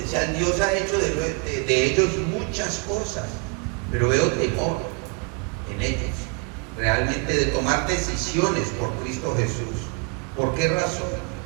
Dios ha hecho de ellos muchas cosas, pero veo temor en ellos, realmente, de tomar decisiones por Cristo Jesús. ¿Por qué razón?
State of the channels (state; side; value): quieter; left; 32.7 dB